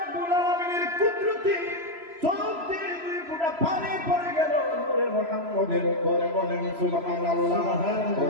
আলামিনের কুদরতি চোখ দিয়ে 2 ফোঁটা পানি পড়ে গেল মুহাম্মদের উপরে বলেন সুবহানাল্লাহ।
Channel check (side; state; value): left; late; 3.0 ms